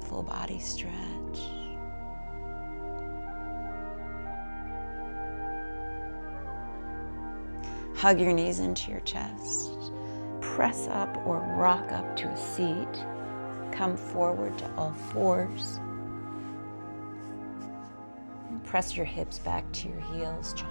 full body stretch. Hug your knees into your chest. Press up or rock up to a seat. Come forward to all fours. And press your hips back to your heels,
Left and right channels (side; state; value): both; inverted; correlation -1.00